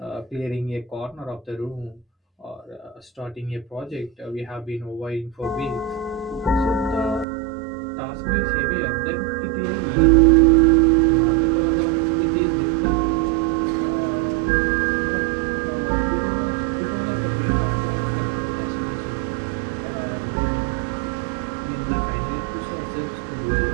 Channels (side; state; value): left; drops out; at 7.2 s